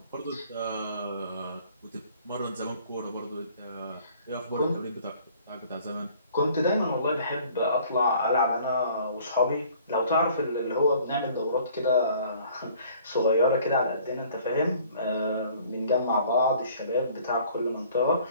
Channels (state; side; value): inverted; both; correlation -0.55